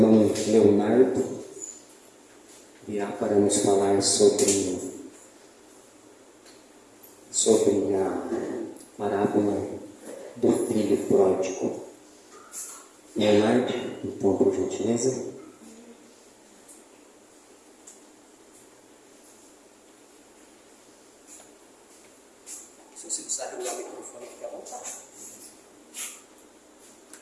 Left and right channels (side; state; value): both; identical; correlation 1.00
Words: Leonardo virá para nos falar sobre a parábola do filho pródigo. Leonardo, então, por gentileza. Se você precisar ligar o microfone, fica à vontade.